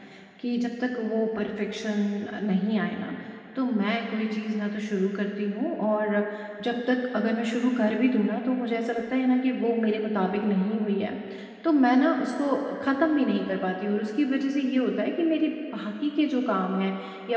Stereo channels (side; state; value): both; identical; correlation 1.00